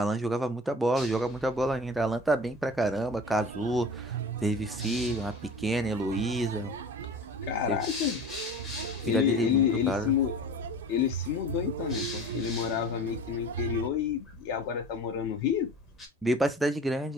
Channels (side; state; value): both; normal; correlation 0.38